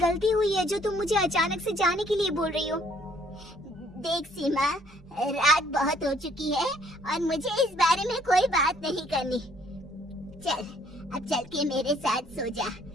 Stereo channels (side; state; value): both; normal; correlation 0.63